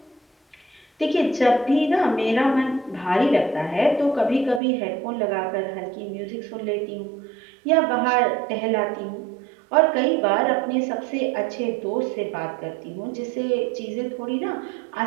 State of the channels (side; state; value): left; drops out; at 4.6 s